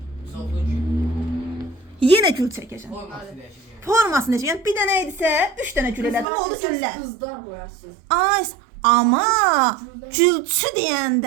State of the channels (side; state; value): left; drops out; at 6.2 s